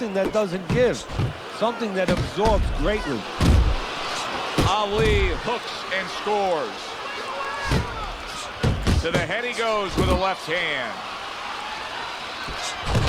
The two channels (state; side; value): identical; both; correlation 1.00